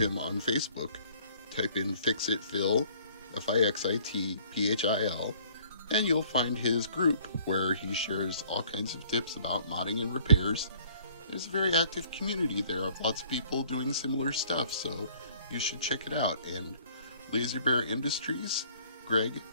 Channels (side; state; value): both; inverted; correlation -0.57